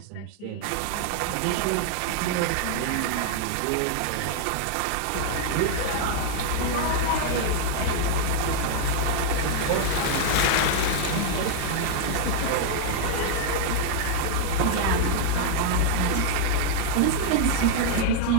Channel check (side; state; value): both; different; correlation -0.01